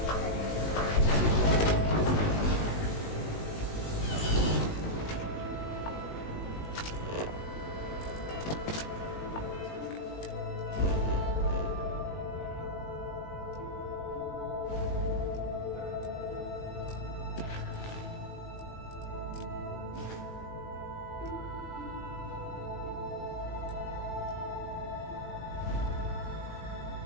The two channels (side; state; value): right; late; 19 ms